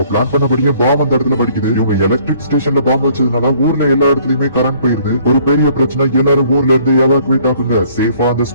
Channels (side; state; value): both; inverted; correlation -0.60